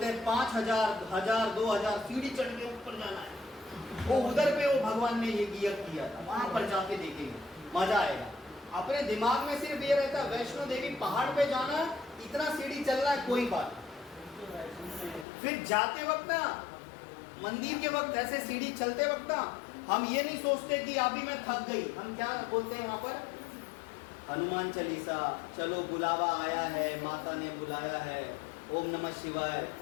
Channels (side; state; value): right; drops out; at 15.2 s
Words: हैं 5000, 1000, 2000 सीढ़ी चढ़ के ऊपर जाना है। वो उधर पे वो भगवान ने ये किया था, वहां पर जाके देखेंगे, मजा आएगा। अपने दिमाग में सिर्फ ये रहता है वैष्णो देवी पहाड़ पे जाना, इतना सीढ़ी चलना है, कोई बात। फिर जाते वक्त ना, मंदिर के वक्त ऐसे सीढ़ी चलते वक्त ना, हम ये नहीं सोचते कि अभी मैं थक गई, हम क्या बोलते हैं वहां पर, हनुमान चालीसा, चलो बुलावा आया है, माता ने बुलाया है, ओम नमः शिवाय,